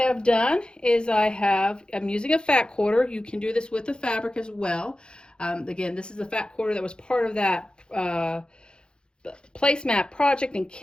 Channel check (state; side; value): late; right; 0.050 ms